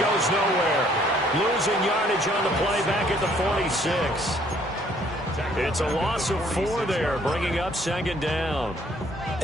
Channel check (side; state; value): both; normal; correlation 0.62